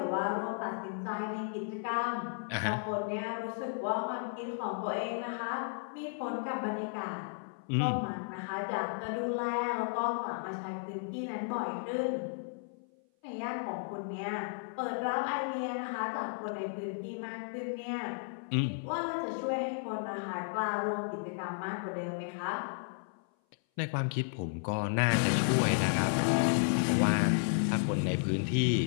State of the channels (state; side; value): silent; right; 55 dB below the other